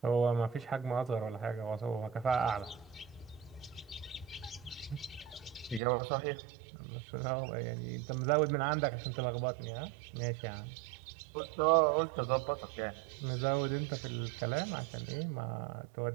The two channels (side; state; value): left; drops out; at 5.8 s